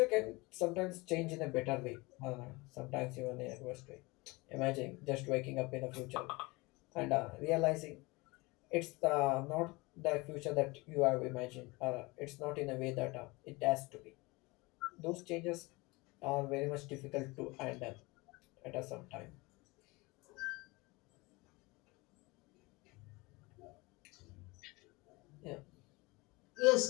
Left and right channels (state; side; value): quieter; right; 24.2 dB